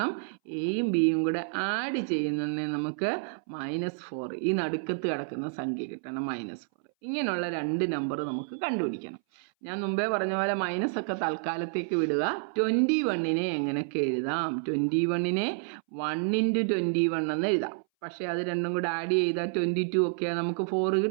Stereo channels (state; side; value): silent; left; 58 dB below the other